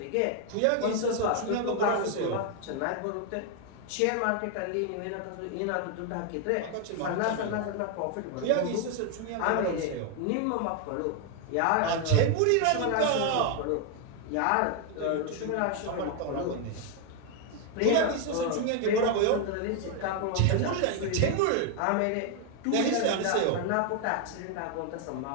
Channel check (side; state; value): both; different; correlation 0.01